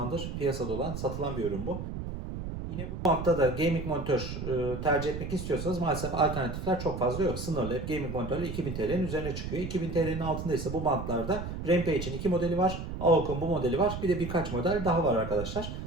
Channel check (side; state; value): right; noise; rumble, 6 dB below the sound